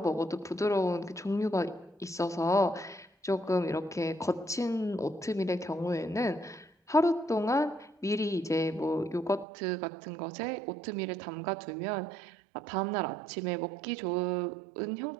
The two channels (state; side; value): drops out; left; at 9.5 s